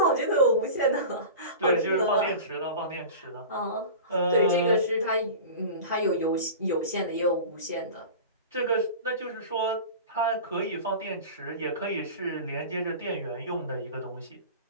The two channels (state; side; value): inverted; both; correlation -0.33